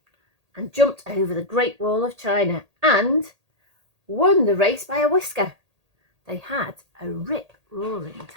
and jumped over the Great Wall of China and won the race by a whisker. They had a rip-roaring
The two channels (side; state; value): left; late; 1.8 ms